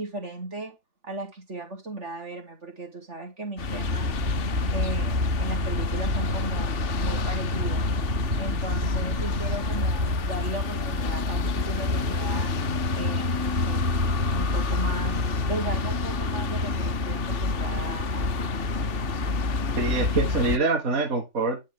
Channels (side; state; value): left; late; 3.4 ms